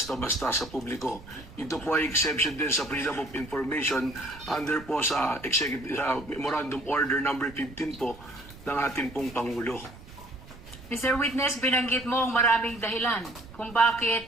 sa publiko. Ito po ay exception din sa Freedom of Information under po sa Memorandum Order number 15 po ng ating pong Pangulo. Mr. Witness, binanggit mo ang maraming dahilan kung bakit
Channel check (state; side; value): noise; right; rumble, 18 dB below the sound